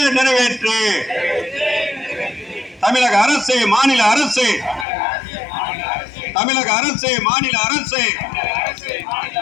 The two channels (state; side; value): drops out; right; at 4.9 s